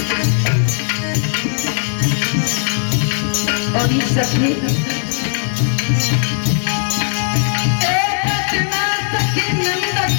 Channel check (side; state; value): right; silent; 57 dB below the other